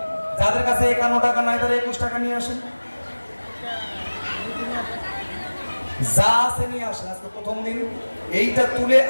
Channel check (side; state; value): both; inverted; correlation -1.00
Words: যাদের কাছে 51 টাকা নাই তারা 21 টাকা নিয়ে আসেন, যা আছে নিয়ে আসেন। আজকে প্রথম দিন, এইটা তুলে